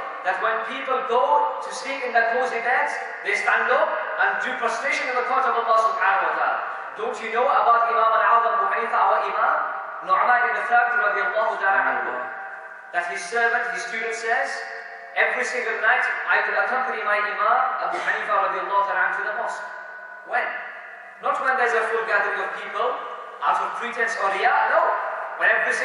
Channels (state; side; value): identical; both; correlation 1.00